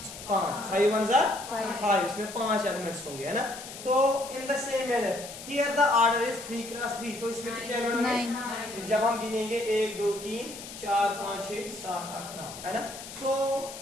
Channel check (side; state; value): left; noise; hiss, 12 dB below the sound